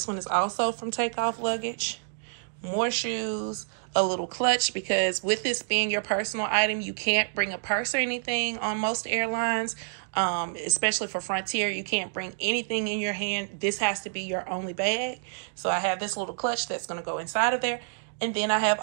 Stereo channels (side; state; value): left; silent; digital silence